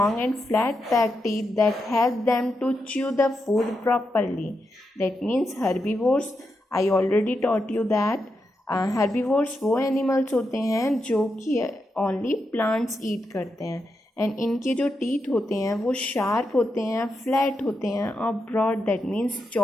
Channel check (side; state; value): both; normal; correlation 0.85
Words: and flat back teeth that help them to chew the food properly. That means herbivores, I already taught you that herbivores वो animals होते हैं जो कि only plants eat करते हैं, and इनके जो teeth होते हैं वो sharp होते हैं, flat होते हैं और broad, that means